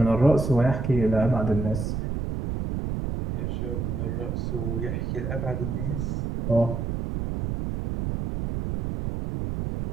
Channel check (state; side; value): noise; right; rumble, 3 dB below the sound